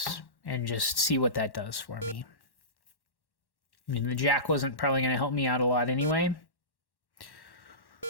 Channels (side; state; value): right; late; 1.1 ms